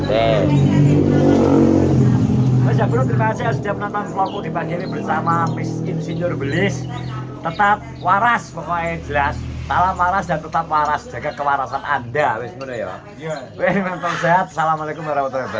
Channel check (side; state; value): both; identical; correlation 1.00